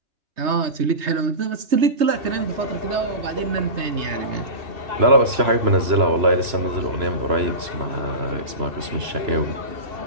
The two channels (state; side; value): late; left; 3.0 ms